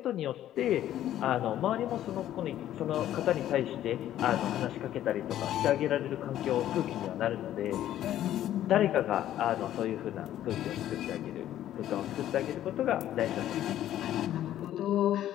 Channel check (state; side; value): quieter; right; 12.3 dB